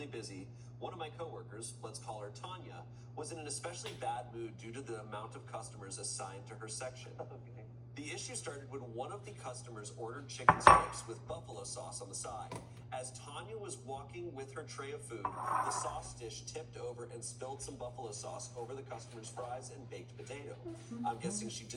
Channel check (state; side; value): identical; both; correlation 1.00